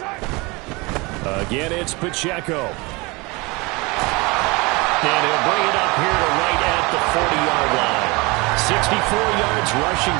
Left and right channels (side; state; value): left; quieter; 25.6 dB